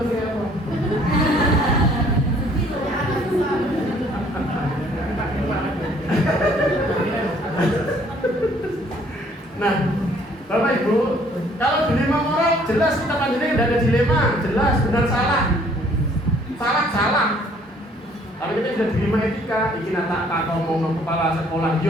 kayak apa? Nah, Bapak Ibu, kalau dilema moral jelas kita panjenengan tidak ada dilema, jelas benar salah. Salah. Tapi kita sudah dilema etika, iki nak tak ngomong kepala sekolah,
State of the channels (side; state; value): both; normal; correlation 0.60